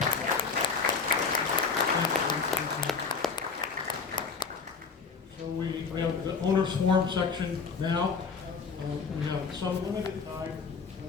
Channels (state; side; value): quieter; right; 5.2 dB